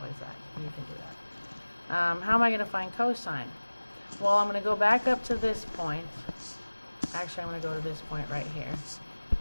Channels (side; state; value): both; inverted; correlation -1.00